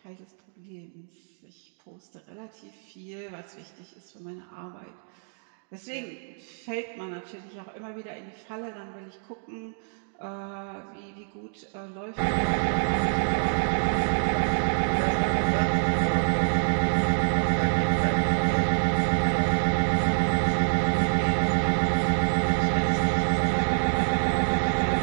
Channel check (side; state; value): left; silent; 60 dB below the other